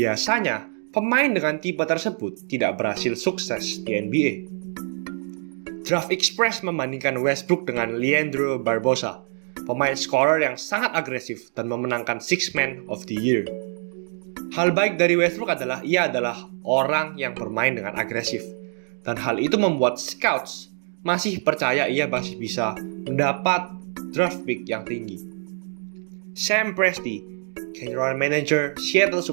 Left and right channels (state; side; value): silent; left; 62 dB below the other